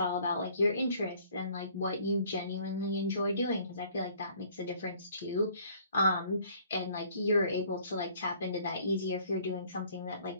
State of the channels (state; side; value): inverted; both; correlation -0.58